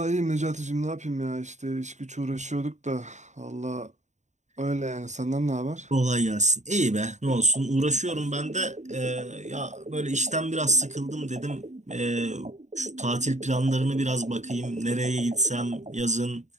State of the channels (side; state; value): left; late; 0.34 ms